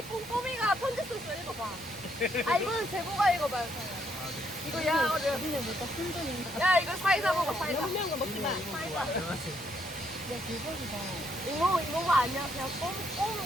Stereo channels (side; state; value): right; noise; rumble, 29 dB below the sound